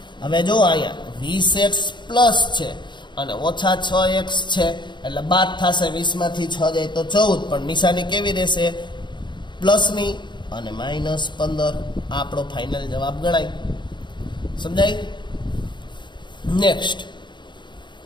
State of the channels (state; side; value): late; right; 0.22 ms